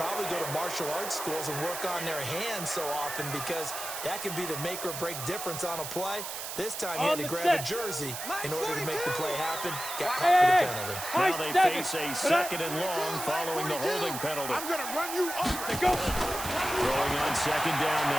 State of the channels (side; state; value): right; noise; hiss, 7 dB below the sound